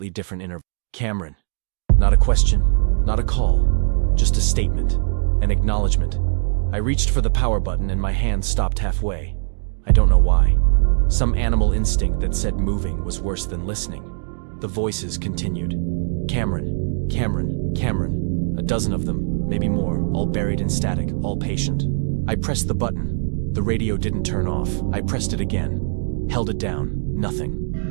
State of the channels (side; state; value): left; silent; digital silence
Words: different intervals. Cameron. Not a question, not a call. Just a statement. An acknowledgement. I reached for the power button and my hand stopped halfway. I don't know why. Some animal instinct that said moving was worse than listening. The voices continued. Cameron, Cameron, Cameron. A dozen of them, maybe more, all buried in static, all patient. I pressed the button. The radio didn't turn off. I pressed it again. Held it down.